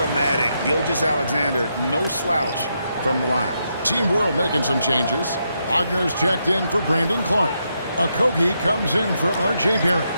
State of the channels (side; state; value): both; inverted; correlation -0.81